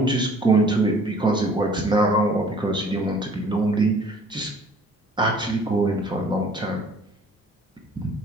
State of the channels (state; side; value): normal; both; correlation 0.53